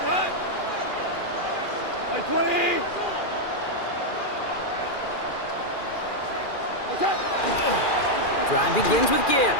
Like 20. Drive begins with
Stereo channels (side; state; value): right; late; 2.4 ms